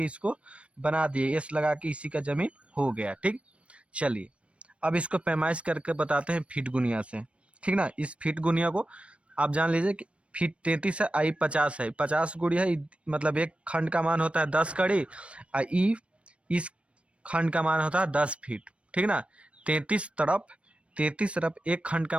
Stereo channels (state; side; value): late; left; 0.061 ms